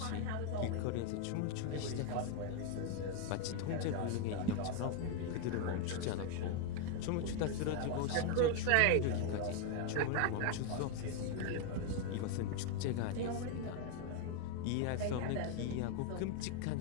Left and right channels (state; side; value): different; both; correlation 0.01